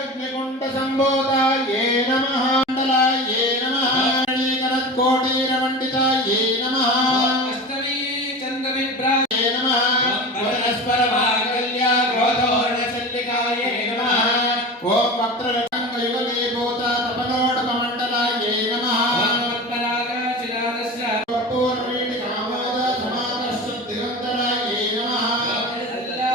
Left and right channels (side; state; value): both; normal; correlation 0.30